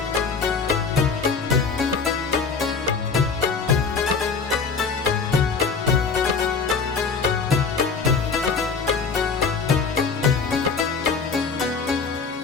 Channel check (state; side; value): quieter; right; 5.1 dB